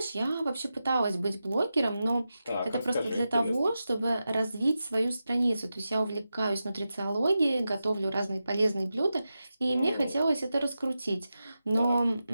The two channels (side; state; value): both; inverted; correlation -0.91